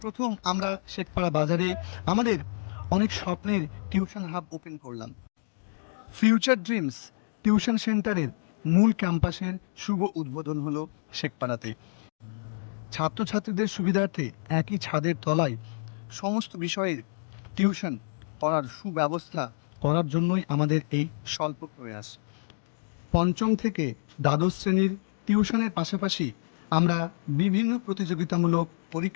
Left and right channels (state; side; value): silent; right; digital silence